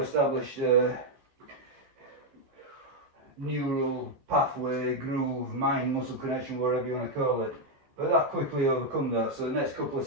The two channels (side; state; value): left; late; 14 ms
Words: neural pathway, groove, mind muscle connection, whatever you want to call it. But that quickly overcome that. So the next couple of